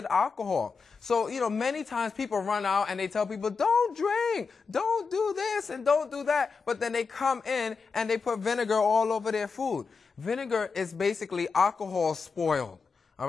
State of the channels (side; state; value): right; quieter; 5.0 dB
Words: alcohol. So, you know, many times people run out and they tell people, don't drink, don't do this, and don't do that. But then they come in and they put vinegar all over their food. Vinegar is basically alcohol spoiled. All